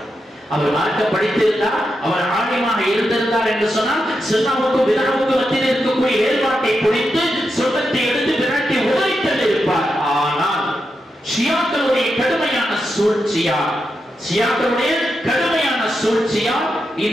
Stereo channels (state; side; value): normal; both; correlation 0.86